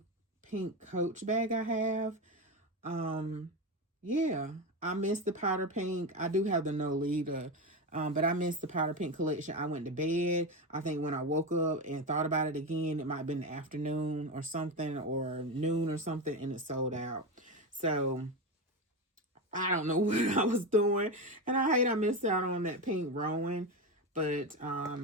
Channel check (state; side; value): normal; both; correlation 0.16